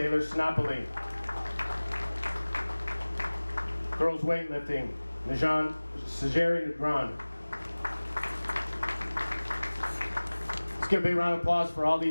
Sinopoli. Girls weightlifting, Najan Sajeri Negron. Let's give a big round of applause for all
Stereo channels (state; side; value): inverted; both; correlation -1.00